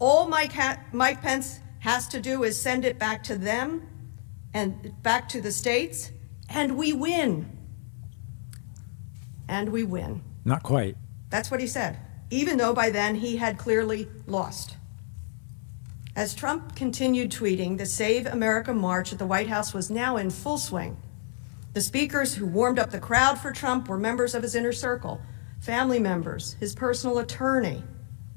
Mike Pence has to do is send it back to them and back to the states, and we win." And we win. Not quite. That's what he said, even though by then he had clearly lost. As Trump continued tweeting, the Save America March at the White House was now in full swing. The speakers who warmed up the crowd for Trump were members of his inner circle, family members, his personal attorney,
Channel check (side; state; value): right; silent; 59 dB below the other